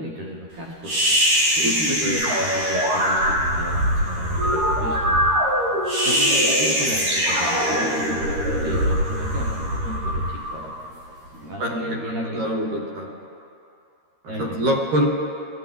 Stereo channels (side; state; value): left; late; 13 ms